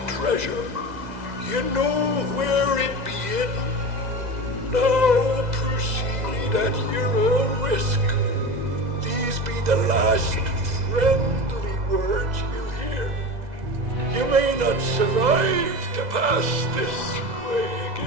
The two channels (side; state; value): left; late; 2.0 ms